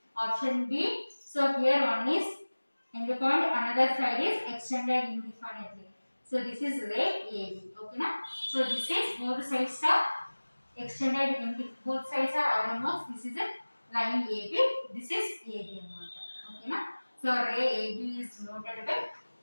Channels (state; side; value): inverted; both; correlation -1.00